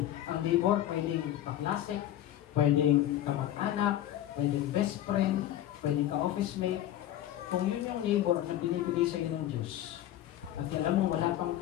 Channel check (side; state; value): right; quieter; 12.6 dB